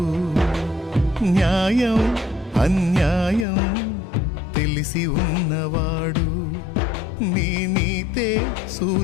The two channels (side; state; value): right; drops out; at 3.5 s